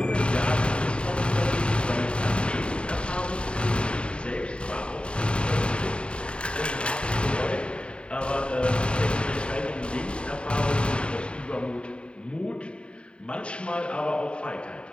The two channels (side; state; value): right; late; 0.054 ms